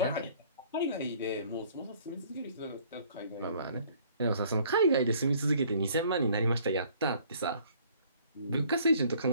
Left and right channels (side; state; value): both; inverted; correlation -0.57